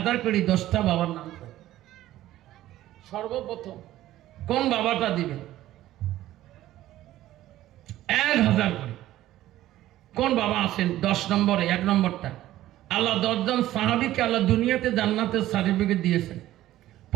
করে 10টা বাবার নাম। সর্বপ্রথম কোন বাবাটা দিবেন? 1,000 করে কোন বাবা আছেন? 10 নম্বরে 1 নম্বরটা, আল্লাহ 10 জন সাহাবীকে আল্লাহ দুনিয়াতে জান্নাতের সার্টিফিকেট দিয়েছেন।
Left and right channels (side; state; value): left; quieter; 14.4 dB